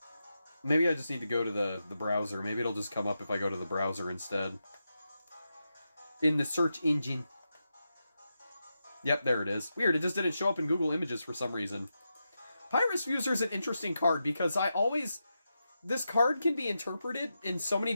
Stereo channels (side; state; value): both; inverted; correlation -0.88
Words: Maybe I just need to go to the browser. Maybe it'll just come up if I go to the browser instead. In the search engine. Yep, there it is. Weird, it just didn't show up in Google Images for some reason. Pyrus Fuser is an interesting card because this card can be interpreted in so many